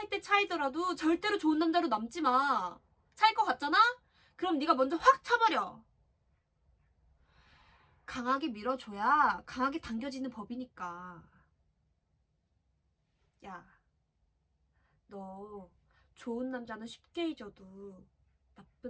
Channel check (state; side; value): identical; both; correlation 1.00